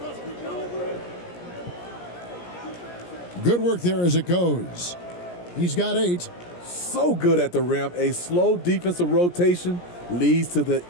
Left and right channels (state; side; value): late; right; 17 ms